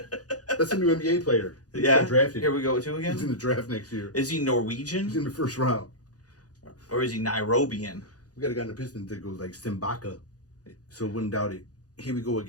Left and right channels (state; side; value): late; right; 0.68 ms